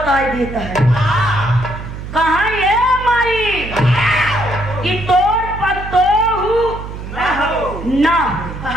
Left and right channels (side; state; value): right; noise; hum, 10 dB below the sound